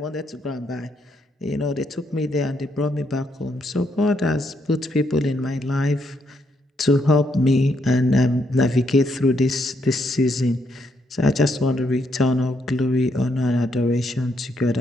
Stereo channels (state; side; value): normal; both; correlation 0.76